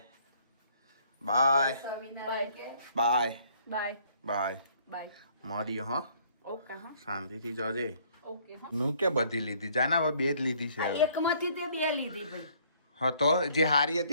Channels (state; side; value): inverted; both; correlation -0.61